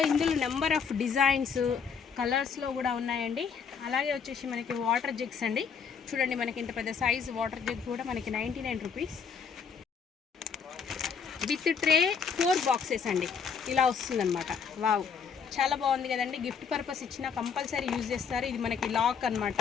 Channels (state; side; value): quieter; right; 6.4 dB